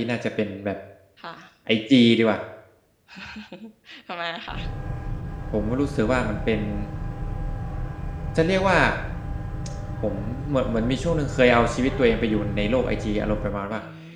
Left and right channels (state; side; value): identical; both; correlation 1.00